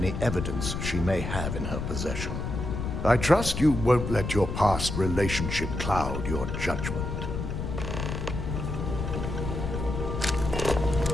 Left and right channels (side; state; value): left; noise; rumble, 4 dB below the sound